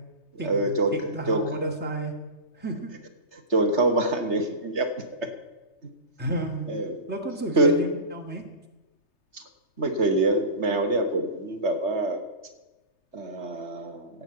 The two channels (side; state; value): right; late; 3.3 ms